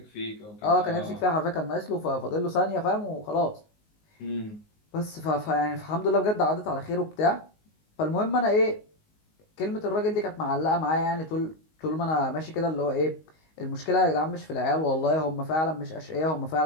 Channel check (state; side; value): late; right; 19 ms